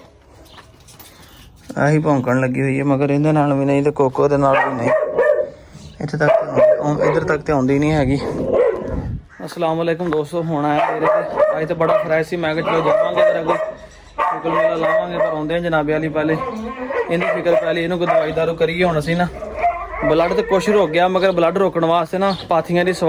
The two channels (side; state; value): both; identical; correlation 1.00